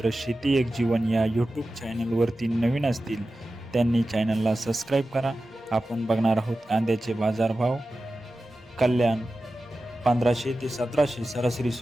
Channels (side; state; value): both; normal; correlation 0.94